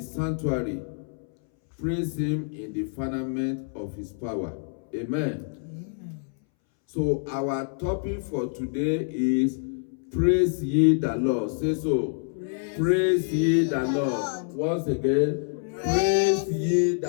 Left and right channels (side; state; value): right; silent; 60 dB below the other